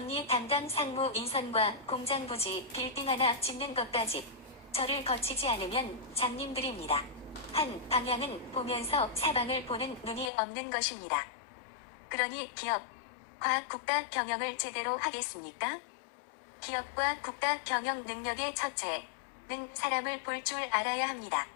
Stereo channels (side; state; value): right; drops out; at 10.3 s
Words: 담당 상무 인선과 공장 부지 빌딩 하나 짓는 것까지 저를 거치지 않으면 장님들입니다. 한 방향은 보면서 사방을 보는 눈이 없는 것입니다. 그러니 기업과 국가 경영을 제대로 하겠습니까? 기업과 국가 경영 능력의 첫째는 사람을 볼 줄 알아야 합니다.